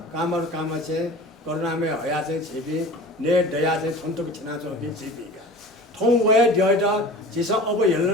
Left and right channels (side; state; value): both; normal; correlation 0.39